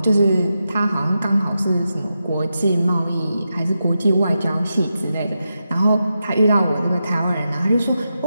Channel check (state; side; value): inverted; both; correlation -0.88